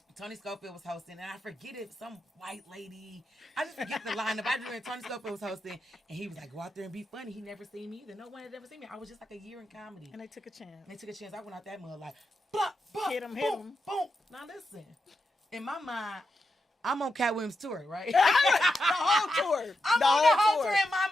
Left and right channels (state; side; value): normal; both; correlation 0.87